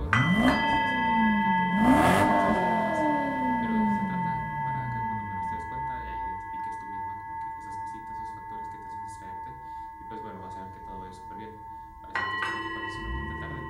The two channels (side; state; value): both; identical; correlation 1.00